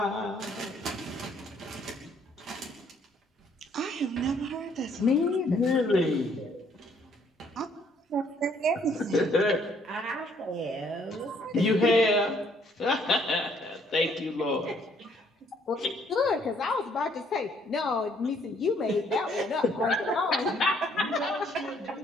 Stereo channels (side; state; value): both; normal; correlation 0.65